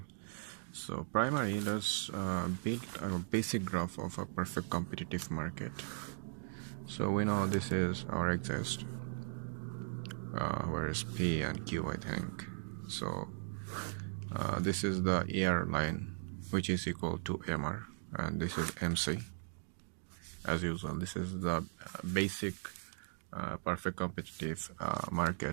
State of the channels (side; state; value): left; silent; digital silence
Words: So primary, let's build a basic graph of a perfect competitive market. So we know this is our axis, where is P and Q, I think. So this is the ER line, which is equal to MR, and this is MC. As usual, this is the basic perfect competitive